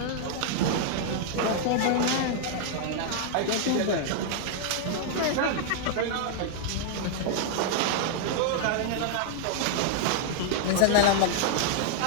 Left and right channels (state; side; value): different; both; correlation 0.00